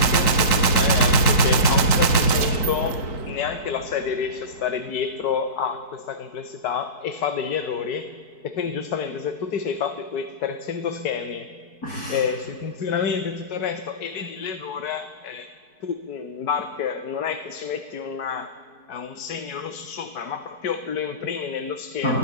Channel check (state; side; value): late; right; 4.6 ms